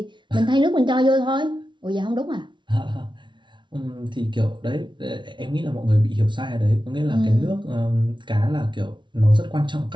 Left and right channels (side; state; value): left; late; 0.24 ms